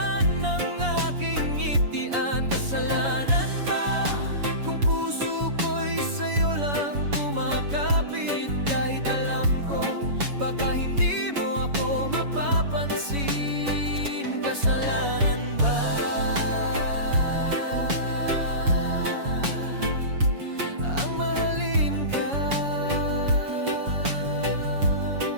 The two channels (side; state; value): left; late; 7.1 ms